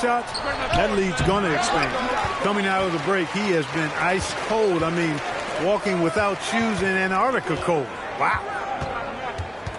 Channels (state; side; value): identical; both; correlation 1.00